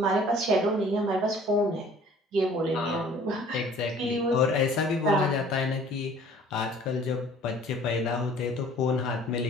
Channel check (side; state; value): both; normal; correlation 0.51